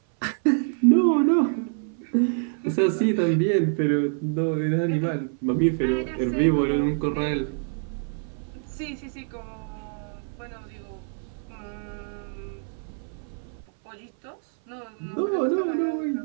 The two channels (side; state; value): left; silent; 57 dB below the other